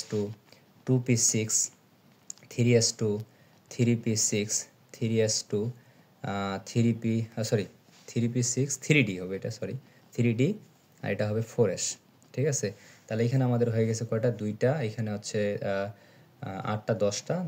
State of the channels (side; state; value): both; identical; correlation 1.00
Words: 2p6 3s2 3p6 3s2 3p 3p6 3d হবে, এটা 3d, আর এটা হবে 4s। ঠিক আছে, তাহলে এখানে আমাদের হয়ে গেছে কয়টা? 2টা, এখানে হচ্ছে 8টা 10টা